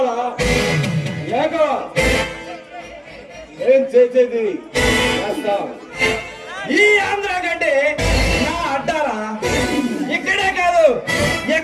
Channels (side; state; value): both; identical; correlation 1.00